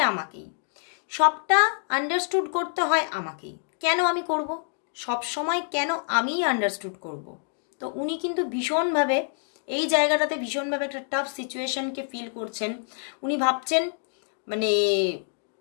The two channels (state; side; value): silent; right; 60 dB below the other